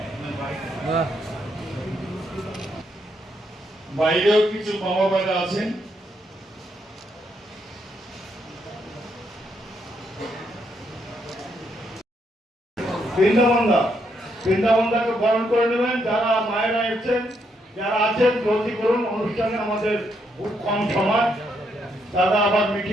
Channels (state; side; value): normal; both; correlation 0.76